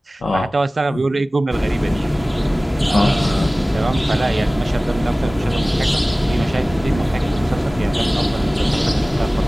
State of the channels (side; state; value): both; normal; correlation 0.97